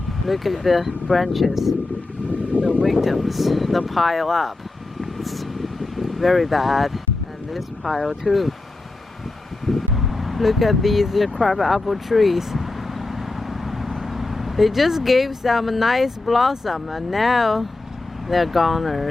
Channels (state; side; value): quieter; right; 3.1 dB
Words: Look at the branches. The victims, the pile up. It's very bad. And this pile too. Look at these crab apple trees. They just gave some nice blossom and now they're